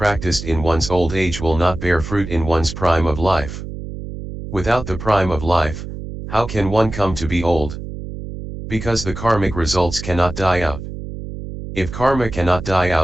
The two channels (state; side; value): noise; right; hum, 9 dB below the sound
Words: in one's old age will not bear fruit in one's prime of life. Without the prime of life, how can one come to be old? Because the karmic results cannot die out. If karma cannot die